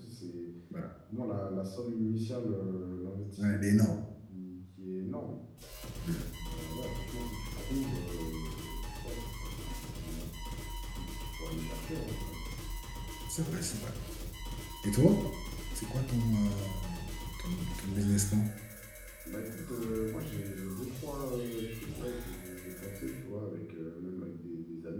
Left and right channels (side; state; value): both; identical; correlation 1.00